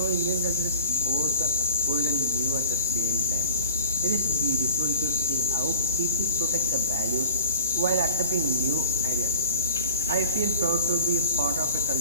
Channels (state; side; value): inverted; both; correlation -0.37